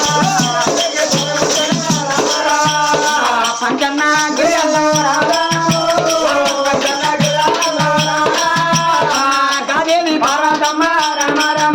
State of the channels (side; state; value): both; identical; correlation 1.00